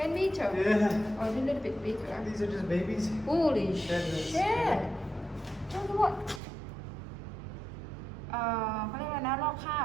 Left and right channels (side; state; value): left; drops out; at 6.4 s